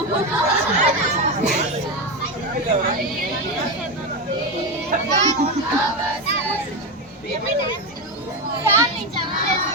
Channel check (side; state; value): both; normal; correlation 0.14